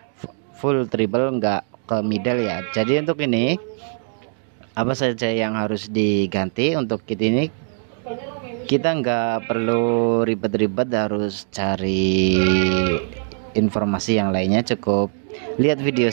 full treble, nggak ke middle ya. Jadi untuk ini apa saja yang harus diganti untuk kit ini, kita nggak perlu ribet-ribet harus cari informasi yang lainnya. Cukup lihat video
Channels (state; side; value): silent; left; 65 dB below the other